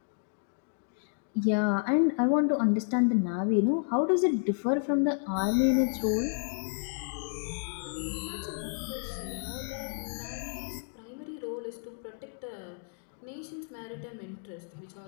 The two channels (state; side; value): silent; right; 57 dB below the other